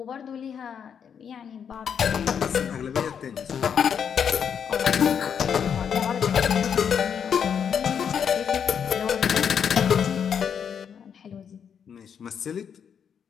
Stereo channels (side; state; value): right; quieter; 7.6 dB